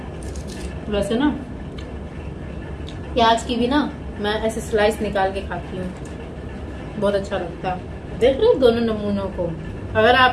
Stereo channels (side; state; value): both; identical; correlation 1.00